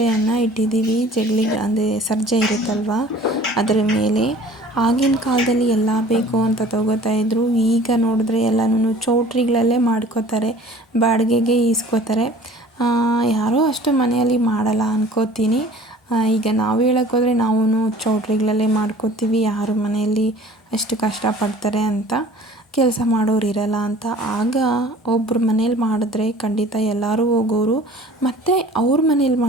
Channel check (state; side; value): normal; both; correlation 0.48